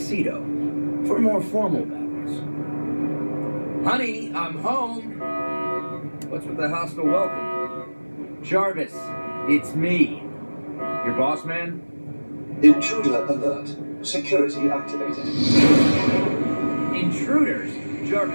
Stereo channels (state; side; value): inverted; both; correlation -1.00